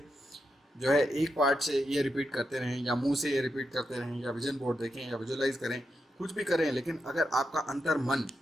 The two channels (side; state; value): both; normal; correlation 0.86